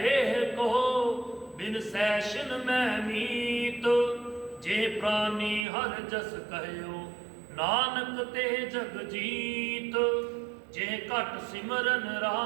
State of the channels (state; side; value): drops out; left; at 5.7 s